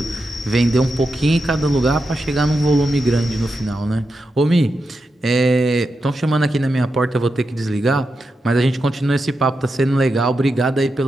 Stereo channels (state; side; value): normal; both; correlation 0.88